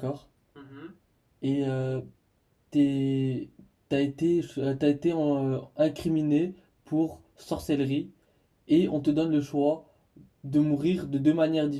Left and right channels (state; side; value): identical; both; correlation 1.00